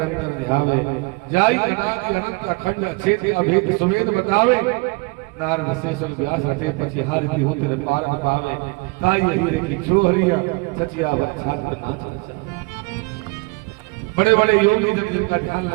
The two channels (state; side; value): quieter; left; 27.9 dB